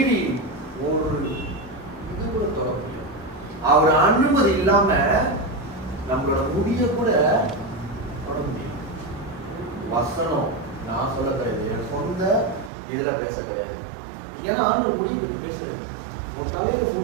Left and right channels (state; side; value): drops out; left; at 12.7 s